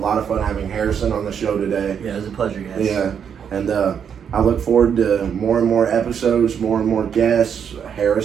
of fun having Harrison on the show today. Yeah, it was a pleasure, guys. Yeah, and I look forward to more and more episodes, more and more guests.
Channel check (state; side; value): quieter; left; 7.7 dB